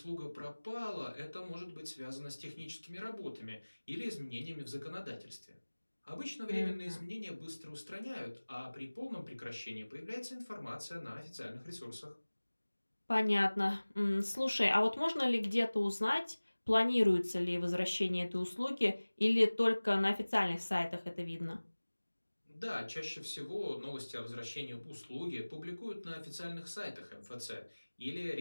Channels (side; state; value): both; inverted; correlation -1.00